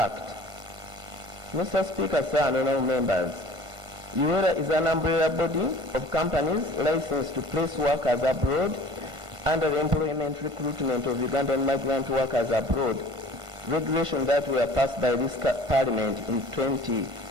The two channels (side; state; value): left; late; 1.5 ms